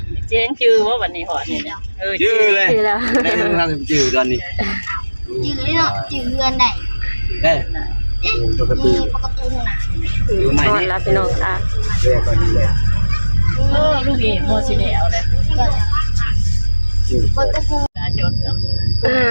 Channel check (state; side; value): inverted; both; correlation -1.00